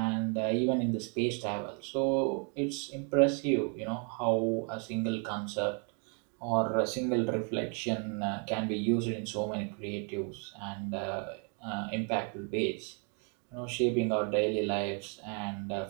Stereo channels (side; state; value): left; quieter; 38.8 dB